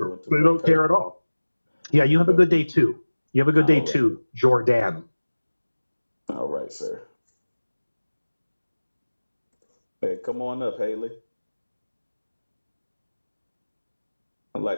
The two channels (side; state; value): both; inverted; correlation -1.00